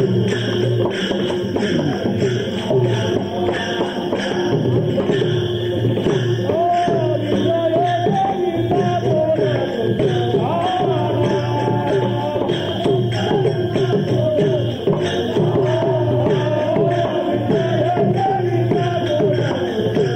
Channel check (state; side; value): identical; both; correlation 1.00